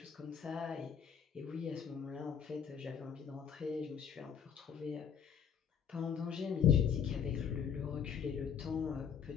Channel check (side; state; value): right; quieter; 7.6 dB